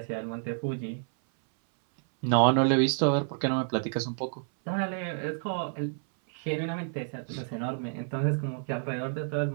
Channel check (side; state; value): left; silent; 58 dB below the other